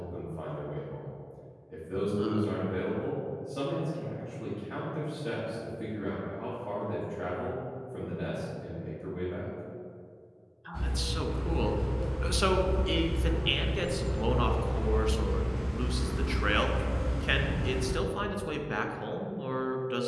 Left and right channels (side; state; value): both; identical; correlation 1.00